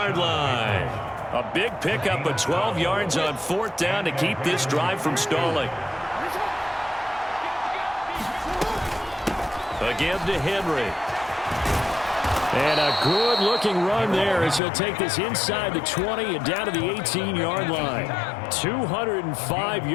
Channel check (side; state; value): right; drops out; at 14.6 s